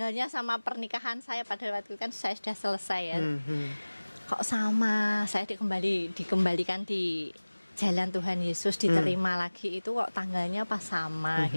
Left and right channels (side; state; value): both; inverted; correlation -1.00